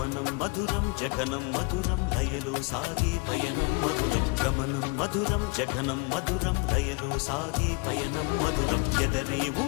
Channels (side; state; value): right; quieter; 29.1 dB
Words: మధురం జగనం మధురం లయలో సాగే పయనం మధురం గమనం మధురం జగనం మధురం లయలో సాగే పయనం మధురం ఎదరే